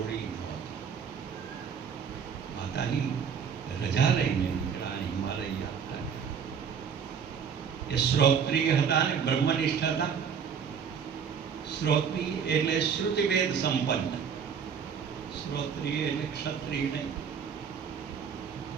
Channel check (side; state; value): left; quieter; 7.0 dB